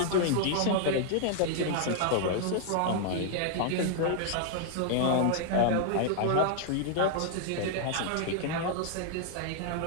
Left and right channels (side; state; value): both; different; correlation 0.00